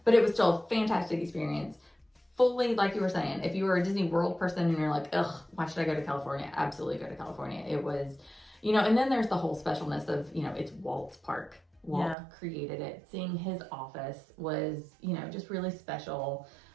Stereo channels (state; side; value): drops out; left; at 12.2 s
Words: But it was still a fantastic experience. Fully, like you were saying, if you were a Disney World person and you're like, ugh, why should I go to California? Absolutely go to California. It was, you know, and then there's the whole specialness of, you know, it's Walt's park. Walt created it. Seeing his office was, you know, just really special.